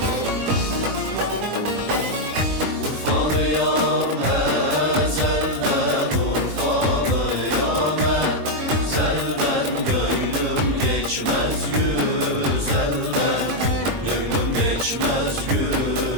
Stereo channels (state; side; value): late; left; 22 ms